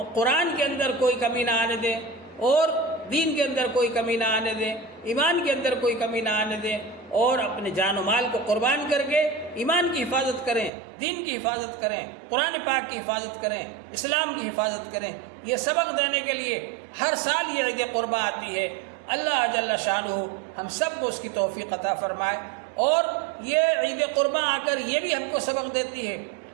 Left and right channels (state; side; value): drops out; left; at 10.7 s